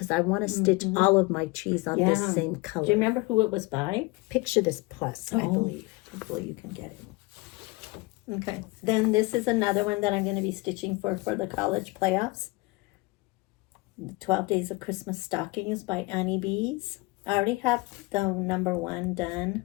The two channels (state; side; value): quieter; right; 24.1 dB